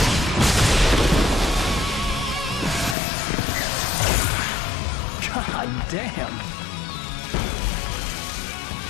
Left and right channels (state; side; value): drops out; right; at 3.0 s